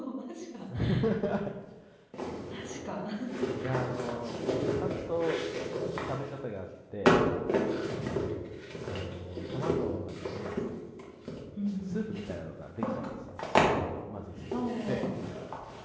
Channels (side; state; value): both; identical; correlation 1.00